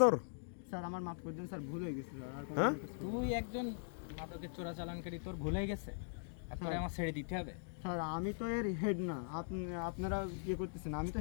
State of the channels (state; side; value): silent; right; digital silence